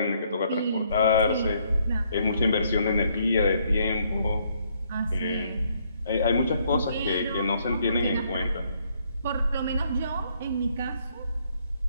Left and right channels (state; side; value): inverted; both; correlation -0.69